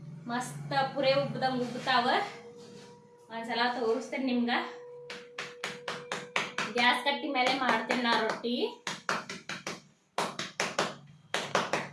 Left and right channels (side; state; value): both; identical; correlation 1.00